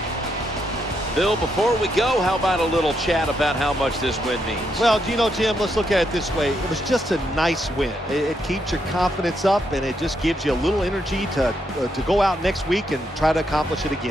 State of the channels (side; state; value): both; normal; correlation 0.79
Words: Bill, before we go, how about a little chat about how much this win means? Well, you know, Jim, let's look at it this way. It was just a nice win. It keeps your confidence up, and it just gives you a little energy to go out next week and try to accomplish it